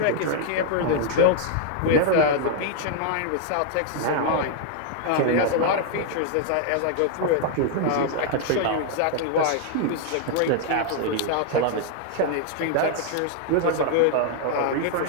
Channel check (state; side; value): different; both; correlation 0.00